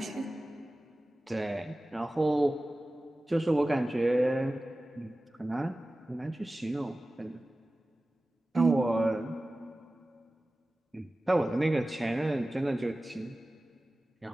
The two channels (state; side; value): normal; both; correlation 0.96